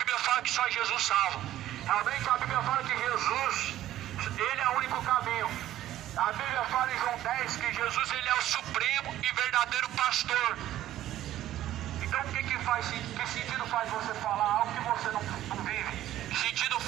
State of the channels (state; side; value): quieter; left; 13.3 dB